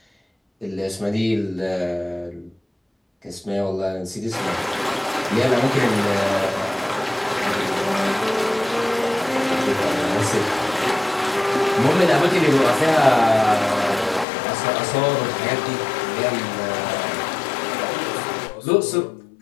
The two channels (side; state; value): right; drops out; at 14.2 s